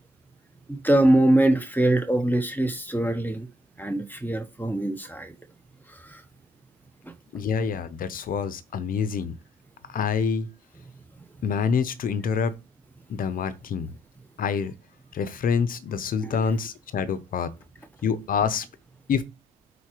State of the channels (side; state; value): both; normal; correlation 0.73